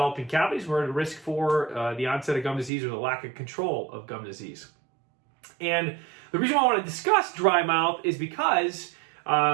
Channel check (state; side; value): drops out; left; at 2.7 s